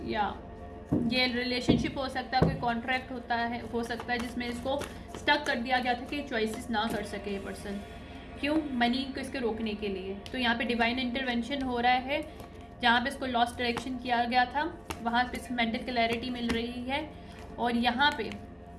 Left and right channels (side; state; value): both; identical; correlation 1.00